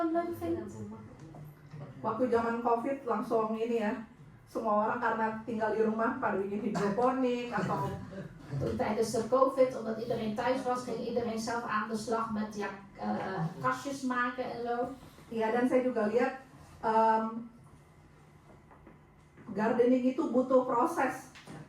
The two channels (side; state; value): both; identical; correlation 1.00